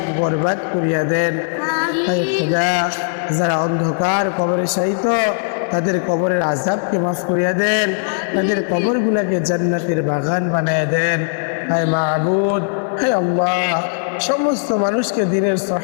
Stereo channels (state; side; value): silent; right; digital silence